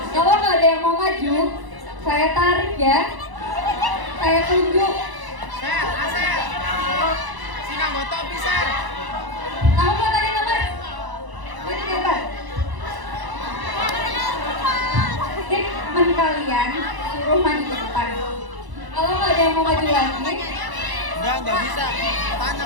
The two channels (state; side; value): late; left; 1.0 ms